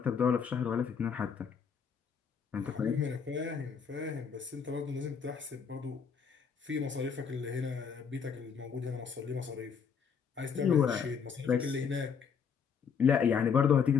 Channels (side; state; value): right; quieter; 6.6 dB